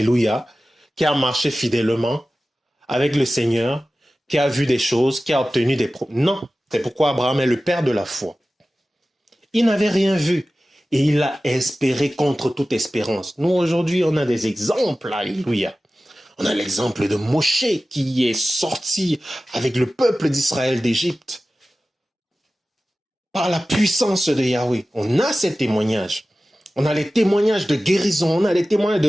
qui a marché fidèlement avec le Seigneur, qui a vu des choses, qui a obtenu des promesses. Non, c'est pourquoi Abraham est le père de la foi. Il n'avait rien vu et il a espéré contre toute espérance. Nous, aujourd'hui, on a des exemples, alléluia. On a l'exemple de Moshe qui est sorti avec le peuple d'Israël d'Égypte par la puissance de Yahweh. On a ces témoignages. On a les témoignages de guérison, on a les témoignages de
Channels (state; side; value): normal; both; correlation 0.96